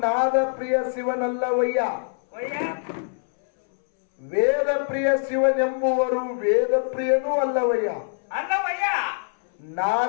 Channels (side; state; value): right; silent; 63 dB below the other